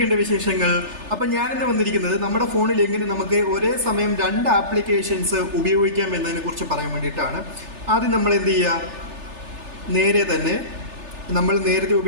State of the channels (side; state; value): left; late; 3.3 ms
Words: വിശേഷങ്ങൾ? അപ്പം ഞാനിന്ന് വന്നിരിക്കുന്നത് നമ്മുടെ ഫോണിൽ എങ്ങനെ നമുക്ക് ഒരേ സമയം 2 ആപ്ലിക്കേഷൻസ് ഉപയോഗിക്കാം എന്നതിനെ കുറിച്ച് പറയാൻ വേണ്ടിയിട്ടാണ്. ആദ്യം നമ്മൾ എന്ത് ചെയ്യുക, നേരെ തന്നെ നമ്മൾ നേരത്തെ